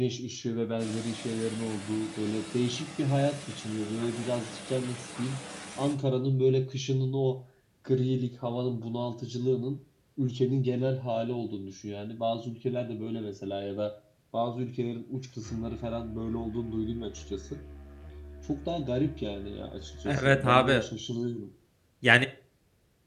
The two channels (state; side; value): identical; both; correlation 1.00